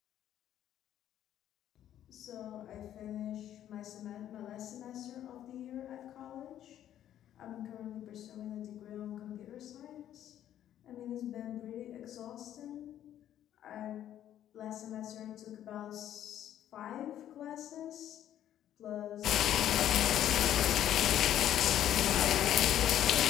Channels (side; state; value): right; quieter; 11.3 dB